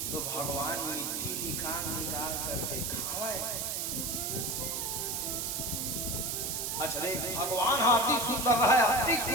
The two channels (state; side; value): noise; right; hiss, 1 dB below the sound